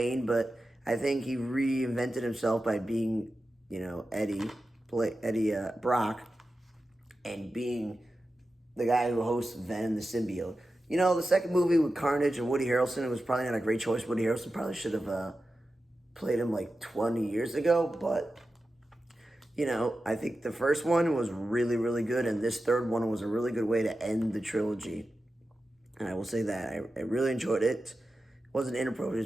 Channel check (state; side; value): normal; both; correlation 0.92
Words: but I think he reinvented himself by being, Eddie Brock, and being the guy who hosts Venom the Symbiote. The second movie with Carnage and Woody Harrelson, it was probably not a great choice. Woody Harrelson probably should have played him 20 years ago. But, I think the first one was really, really good. And this third one was a really good way to end the trilogy. And I will say that. I really enjoyed it. It wasn't